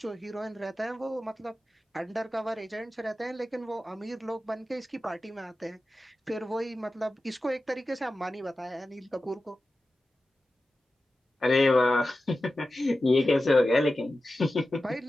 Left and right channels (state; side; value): normal; both; correlation 0.94